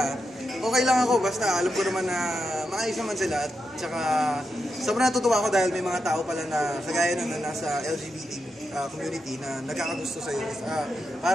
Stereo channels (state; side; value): normal; both; correlation 0.87